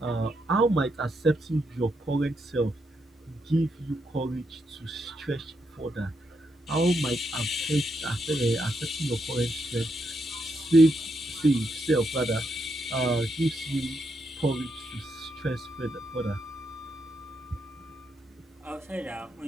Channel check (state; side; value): normal; both; correlation 0.80